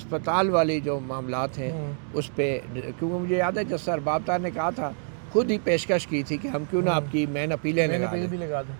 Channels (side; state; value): left; silent; digital silence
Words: वाली जो मामलात हैं उस पर, क्योंकि मुझे याद है जज अरबाब तार ने कहा था, खुद ही पेशकश की थी कि हम क्यों ना आपकी मेन अपीलें लगा दें।